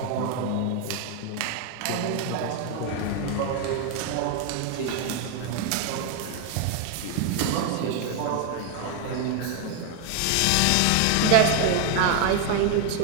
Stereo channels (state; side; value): different; both; correlation 0.01